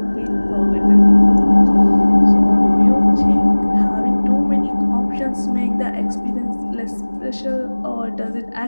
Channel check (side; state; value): both; inverted; correlation -1.00